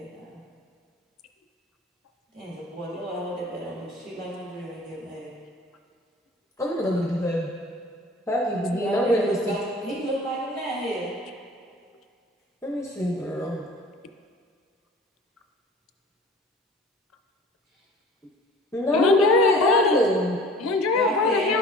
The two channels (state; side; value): normal; both; correlation 0.46